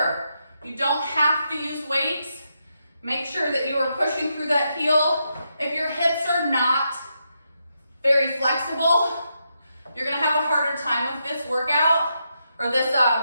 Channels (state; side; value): inverted; both; correlation -0.82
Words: you don't have to use weights. Make sure that you are pushing through that heel. If your hips are not very flexible, you're gonna have a harder time with this workout or this